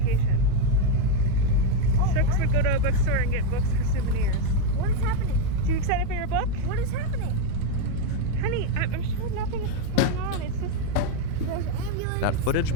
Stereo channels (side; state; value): both; different; correlation 0.03